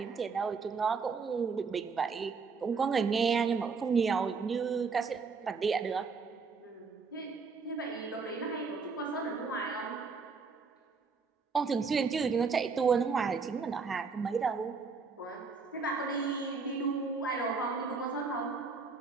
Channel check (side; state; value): left; quieter; 4.9 dB